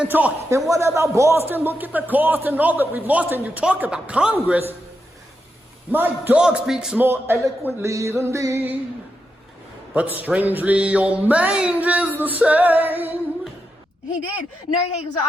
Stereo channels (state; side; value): normal; both; correlation 0.85